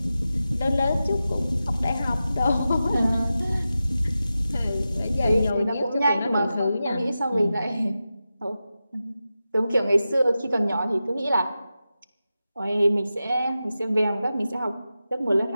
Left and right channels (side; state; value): both; inverted; correlation -0.92